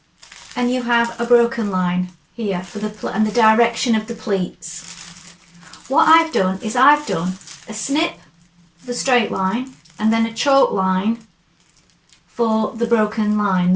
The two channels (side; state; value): both; identical; correlation 1.00